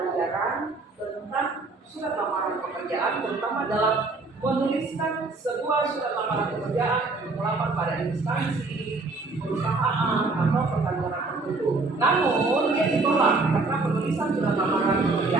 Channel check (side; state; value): left; quieter; 3.6 dB